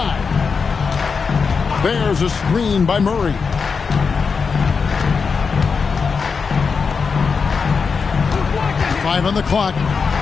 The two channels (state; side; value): quieter; right; 5.3 dB